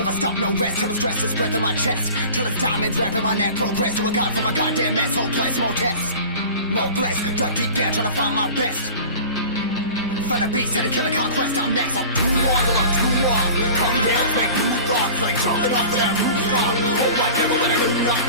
stop, no rest. Till the stress is breath in my chest. Till it's diamonds wrapping my neck. Progress to a god from a goddamn mess. Hopeless, more tests, more blessed. Dug deep down, trying to find my best. Find a beast, had to kill a conquest. I'm next. I'm too on till I'm too off. Come down to make new thoughts, like jumping off of that rooftop. Whole life never when I do nothing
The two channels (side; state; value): both; inverted; correlation -0.39